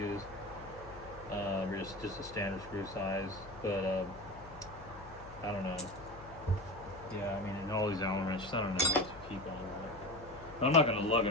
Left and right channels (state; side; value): noise; left; hum, 17 dB below the sound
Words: or just a standard screw size. But I don't know. Yeah, I mean, in all these Allen wrenches, I don't know what to keep on. But I'm not going to lug